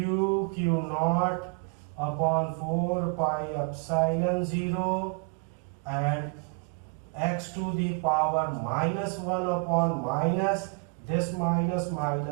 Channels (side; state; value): left; quieter; 35.1 dB